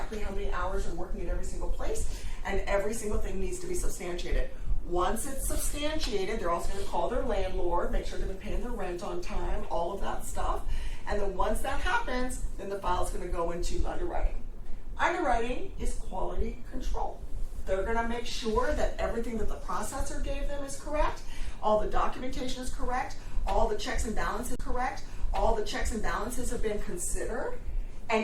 how many hours they're working at every single place, and every single thing needs to be substantiated. Once it's substantiated, they're also going to call their landlord, make sure they've been paying their rent on time, all of that stuff. And then once that happens, then the file is going to go into underwriting. Underwriting is quality control. They're going to make sure that everything that the processor gave them is correct, all the documentation is correct, all the checks and balances are correct, all the checks and balances have been considered. And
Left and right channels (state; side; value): identical; both; correlation 1.00